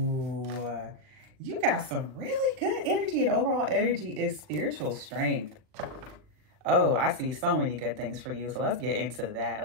You got some really good energy, and overall energy is spiritual strength. Oh, I see so many good things for you. So let's get into that.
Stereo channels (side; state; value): left; late; 39 ms